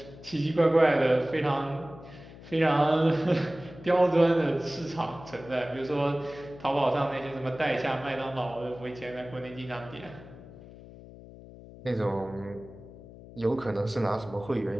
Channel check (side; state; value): left; noise; hum, 17 dB below the sound